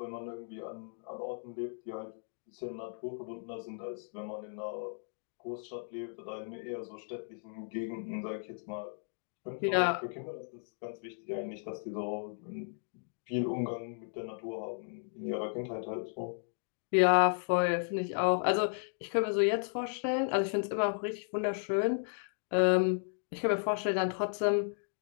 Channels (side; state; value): right; silent; digital silence